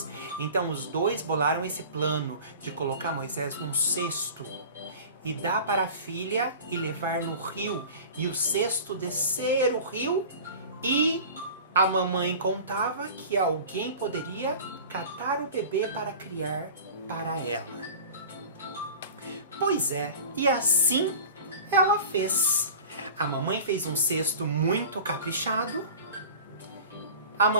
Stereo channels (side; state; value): both; inverted; correlation -0.39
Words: Então os dois bolaram esse plano de colocar Moisés num cesto e dar para a filha e levar no rio. E o cesto descer o rio e a mamãe contava que alguém poderia catar o bebê para criar para ela. Pois é, e assim ela fez. A mamãe fez um cesto muito caprichado. A